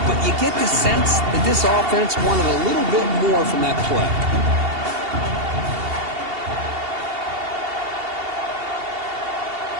but you get the sense that this offense wanted a little bit more from that play.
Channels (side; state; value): left; late; 2.7 ms